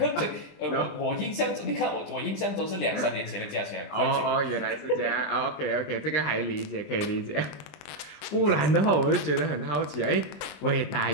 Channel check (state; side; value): late; right; 20 ms